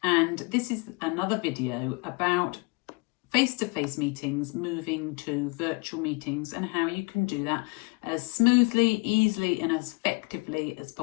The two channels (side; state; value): right; quieter; 29.6 dB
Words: and this is another video about face-to-face meetings moving to virtual meetings and how you can do that as smoothly, easily and as effectively as